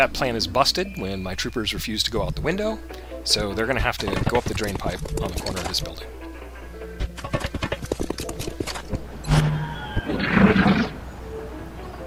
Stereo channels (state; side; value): identical; both; correlation 1.00